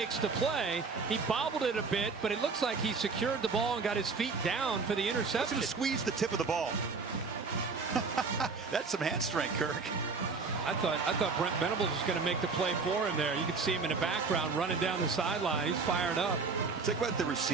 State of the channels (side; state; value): left; quieter; 4.6 dB